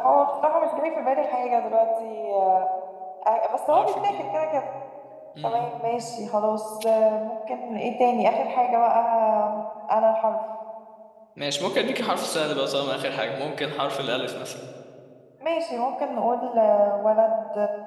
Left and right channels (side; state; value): both; identical; correlation 1.00